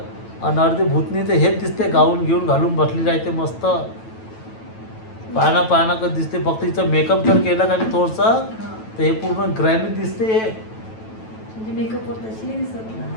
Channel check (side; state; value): right; late; 9.1 ms